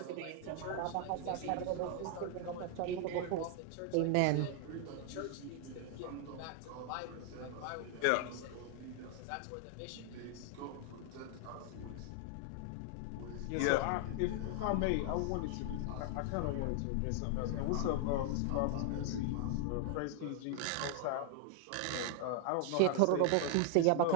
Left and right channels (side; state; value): both; different; correlation 0.00